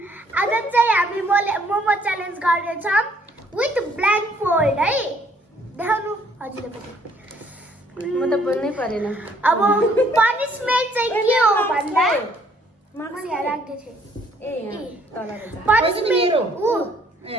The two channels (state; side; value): normal; both; correlation 0.64